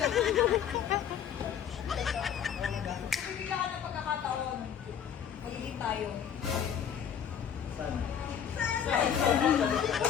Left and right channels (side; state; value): right; quieter; 8.6 dB